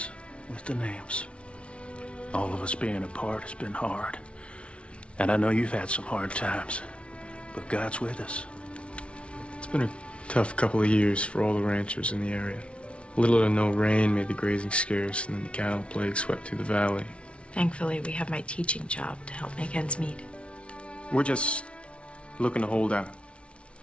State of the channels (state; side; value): late; right; 0.060 ms